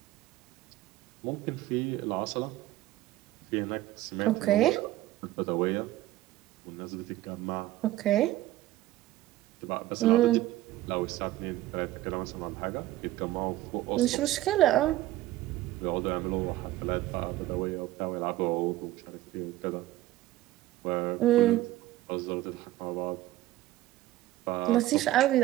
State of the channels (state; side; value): quieter; left; 15.8 dB